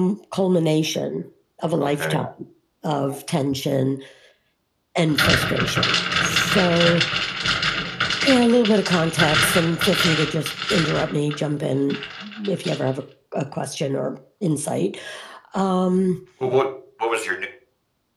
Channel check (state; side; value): identical; both; correlation 1.00